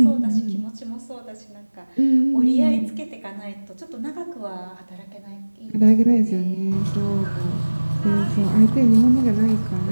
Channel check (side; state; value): both; inverted; correlation -1.00